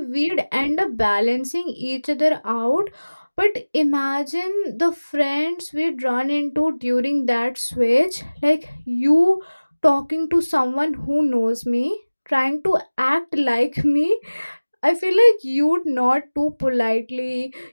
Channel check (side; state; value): both; inverted; correlation -1.00